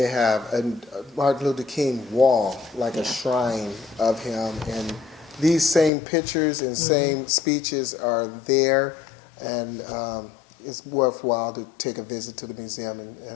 have a Martin Luther King wall, like a shrine of him, and these same pictures and same speeches are there, and it's worthwhile to take a visit to the museum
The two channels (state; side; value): drops out; right; at 5.9 s